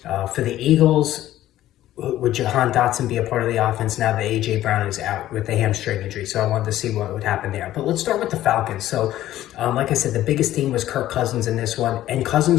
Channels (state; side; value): quieter; right; 13.8 dB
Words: For the Eagles, would Jahan Dotson be a part of the offense now that A.J. Brown is out with the hamstring injury? So I wanted to see what would happen there. But let's start with the Falcons. So like I said, the biggest theme was Kirk Cousins in this one, and